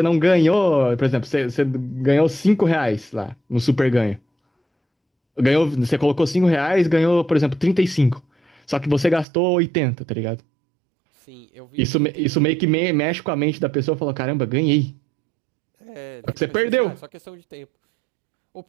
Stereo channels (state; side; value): drops out; left; at 9.2 s